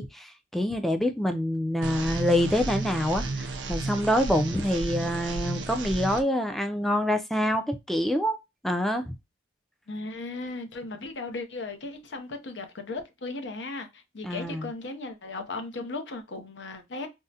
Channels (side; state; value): both; normal; correlation 0.77